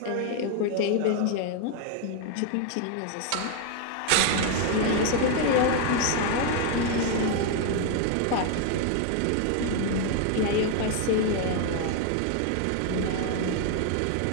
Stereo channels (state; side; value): different; both; correlation 0.01